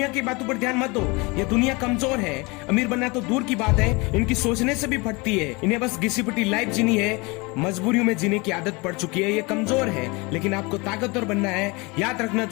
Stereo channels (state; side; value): quieter; right; 26.4 dB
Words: की बातों पर ध्यान मत दो, ये दुनिया कमजोर है। अमीर बनना तो दूर की बात है, इनकी सोचने से भी फटती है। इन्हें बस घिसी पिटी लाइफ जीनी है, मजबूरियों में जीने की आदत पड़ चुकी है। ये कमजोर है, लेकिन आपको ताकतवर बनना है। याद रखना,